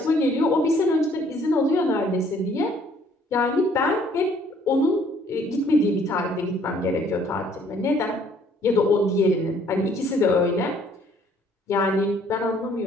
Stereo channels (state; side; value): normal; both; correlation 0.61